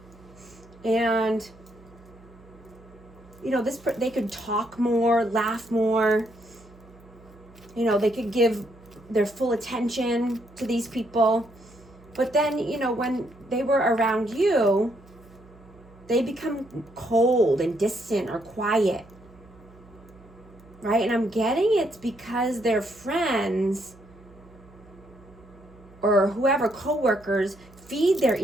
And, you know, they could talk more, laugh more. You know, they could give their full attention to these people. But then, you know, when they were around you, they become cold and distant or quiet, right? And I'm getting it's because their friends or whoever, coworkers, feed their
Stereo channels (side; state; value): right; noise; hum, 24 dB below the sound